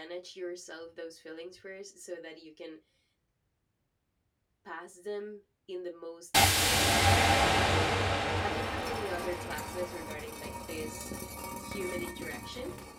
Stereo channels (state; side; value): identical; both; correlation 1.00